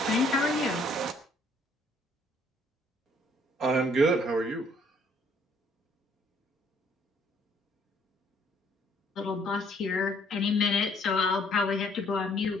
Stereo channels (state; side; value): normal; both; correlation 0.64